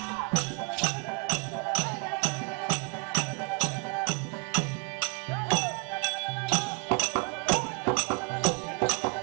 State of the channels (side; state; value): left; quieter; 33.6 dB